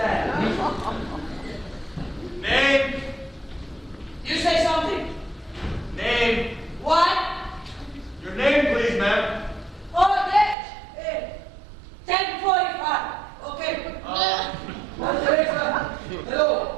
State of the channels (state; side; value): drops out; left; at 10.6 s